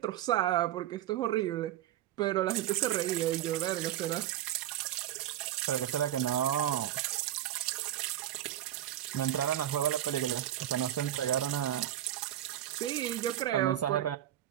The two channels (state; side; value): quieter; left; 12.4 dB